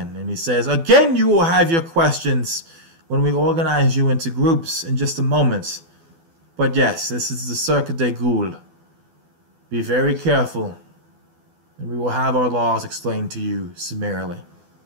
and he says, "Again, you will have your questions when we organize you into groups in just a moment. But yes, this is the Cirque de Goules. Be very careful, and we will have our laws explained to you summarily."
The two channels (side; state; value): left; late; 12 ms